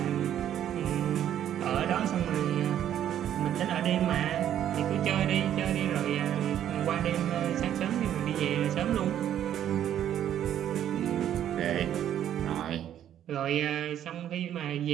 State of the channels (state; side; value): quieter; left; 10.7 dB